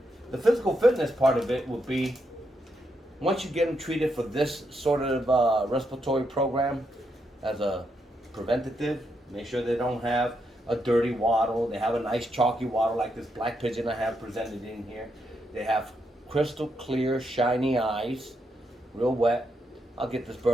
The physical fitness part of it would be, once you get them treated for this sort of respiratory program as a preventative, make sure they don't have a dirty wattle. They have a nice chalky wattle like this black pigeon I have presented in here. They have crystal clear, shiny eyes, real wet. I'll get this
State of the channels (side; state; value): both; normal; correlation 0.81